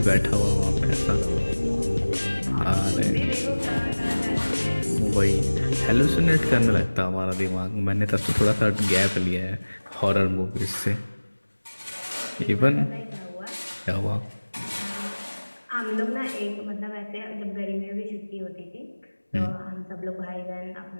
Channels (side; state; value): both; inverted; correlation -1.00